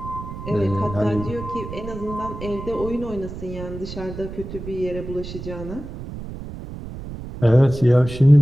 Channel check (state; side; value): noise; right; rumble, 10 dB below the sound